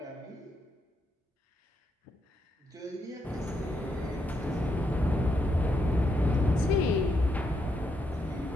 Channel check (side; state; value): both; normal; correlation 0.80